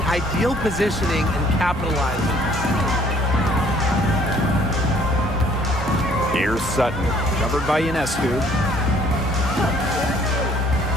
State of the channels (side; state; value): both; normal; correlation 0.60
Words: ideal positioning and capitalizing. Here's Sutton, covered by Ionescu.